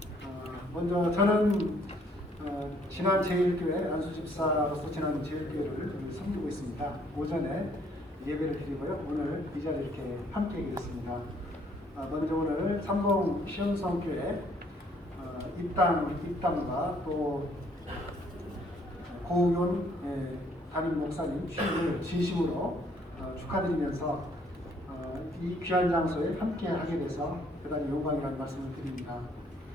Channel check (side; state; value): both; normal; correlation 0.65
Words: 먼저 저는 진안제일교회 안수집사로서 진안제일교회를 섬기고 있습니다. 오전에 예배를 드리고요. 오늘 이 자리에 이렇게 함께 계십니다. 먼저 오늘 삼봉 시온성교회 입당과 또 고의원 담임 목사님 취임을 진심으로 축하드리면서 이 귀한 장소에 함께 하게 돼서 대단히 영광이라는 말씀을 드립니다.